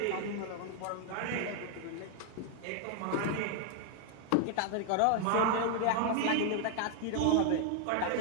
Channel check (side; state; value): both; different; correlation 0.00